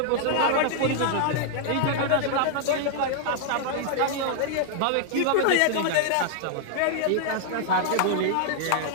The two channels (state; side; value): different; both; correlation -0.01